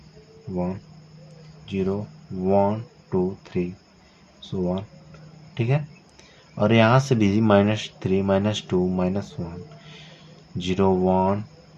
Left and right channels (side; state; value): both; identical; correlation 1.00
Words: 0, 1, 2, 3, सो ऑन, ठीक है। और यहाँ से भी -3, -2, -1, 0, 1,